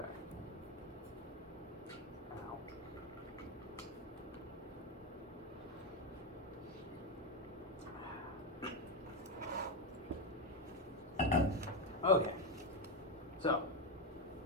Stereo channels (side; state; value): both; normal; correlation 0.09